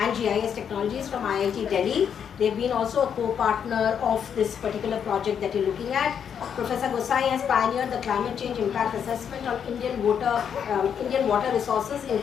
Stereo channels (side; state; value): right; quieter; 7.9 dB